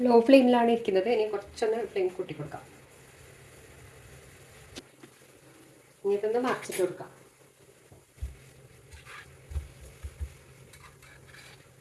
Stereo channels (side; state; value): both; identical; correlation 1.00